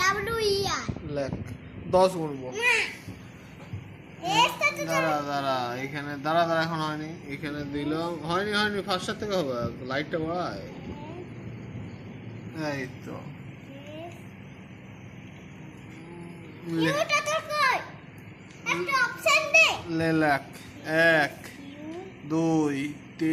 লেখ 10 গুনবো। না দাঁড়া এখানে দাঁড়া এখন হয়নি। এখানে দিলাম হয়নি ফার্স্টার থেকে হবে। লাইটটা বাড়ায়। এই তো লেখ 1 2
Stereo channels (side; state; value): both; identical; correlation 1.00